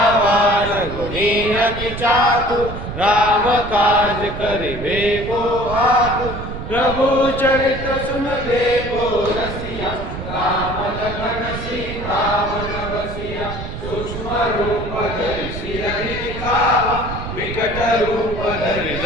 गुणी अति चातुर राम काज करिबे को आतुर प्रभु चरित्र सुनबे को रसिया राम लखन सीता वन बसिया सूक्ष्म रूप धरि सिरहि दिखावा विकट रूप धरि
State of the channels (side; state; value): right; noise; rumble, 8 dB below the sound